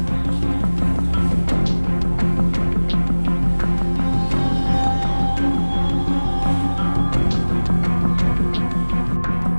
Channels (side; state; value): both; inverted; correlation -1.00